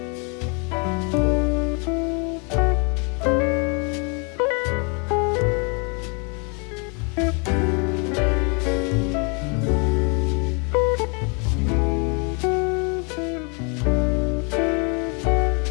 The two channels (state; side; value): quieter; right; 34.3 dB